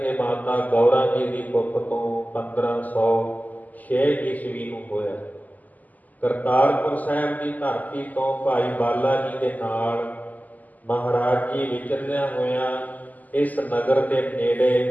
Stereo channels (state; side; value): late; right; 0.080 ms